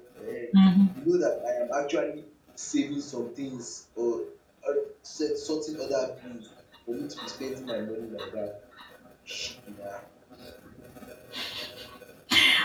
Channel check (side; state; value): both; identical; correlation 1.00